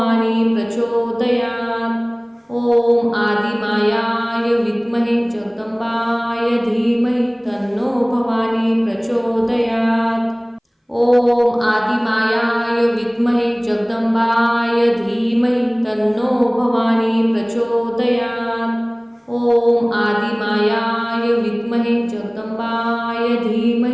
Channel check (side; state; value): both; identical; correlation 1.00